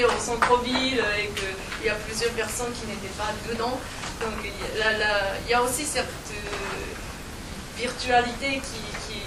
au centre-ville et qu'il y a plusieurs personnes qui n'étaient pas dedans. Donc il y a aussi cette virtualité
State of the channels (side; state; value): both; identical; correlation 1.00